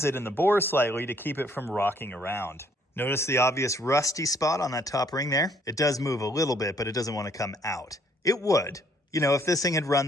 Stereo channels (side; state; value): both; normal; correlation 0.65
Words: it in the bore slightly to keep it from rocking around. Notice the obvious rusty spot on that top ring there? It does move a little bit, but it doesn't want to come out. It would. You know, if this thing had